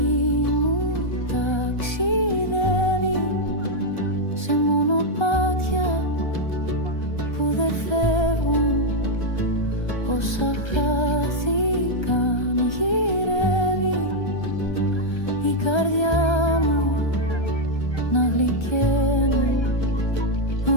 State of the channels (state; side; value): late; right; 1.3 ms